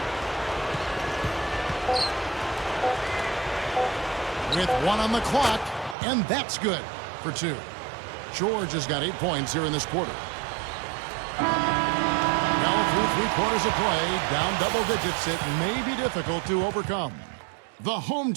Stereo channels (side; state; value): left; drops out; at 6.0 s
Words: With 1 on the clock, and that's good for 2. George has got 8 points here in this quarter. Now through 3 quarters of play, down double digits, it may be difficult to overcome. The home